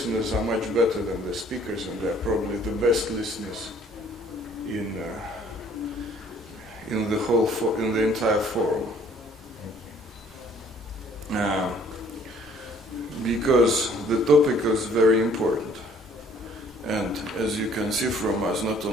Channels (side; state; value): both; normal; correlation 0.58